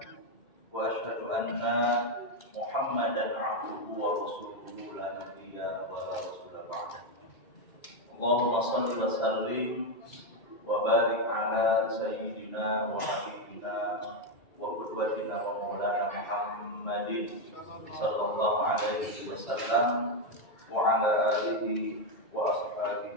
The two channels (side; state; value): right; late; 2.1 ms